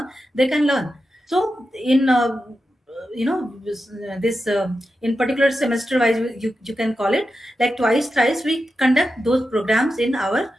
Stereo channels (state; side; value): normal; both; correlation 0.90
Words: they can learn. So in this in particular semester wise, you can call it like twice thrice we conduct those programs in our